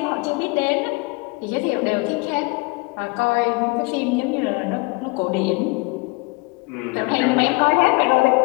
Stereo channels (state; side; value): quieter; right; 27.7 dB